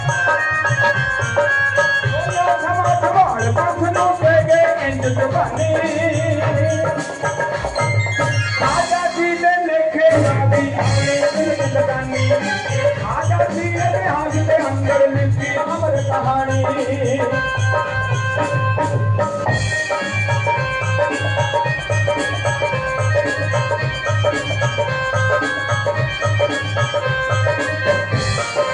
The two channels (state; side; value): identical; both; correlation 1.00